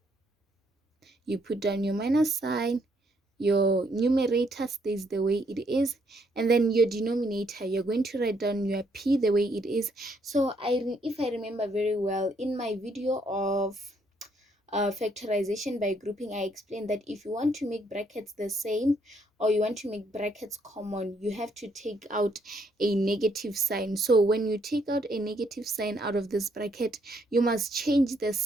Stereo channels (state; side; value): normal; both; correlation 0.71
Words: You put down your minus sign, your numerator stays the way it is, and then your denominator, you're going to write down your p the way it is. So if I remember very well, in my video of factorization by grouping, I explained that if you want to make brackets the same or you want to make brackets common, you have to take out a negative sign. So when you take out a negative sign out of this bracket, you must change the